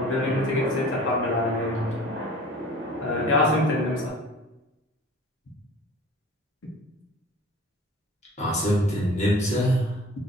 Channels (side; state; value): both; normal; correlation 0.44